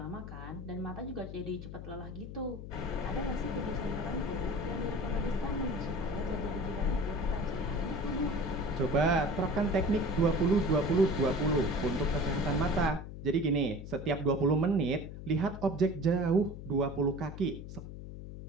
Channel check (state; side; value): noise; left; hum, 10 dB below the sound